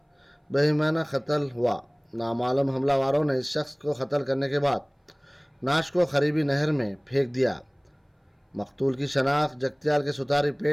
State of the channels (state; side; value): identical; both; correlation 1.00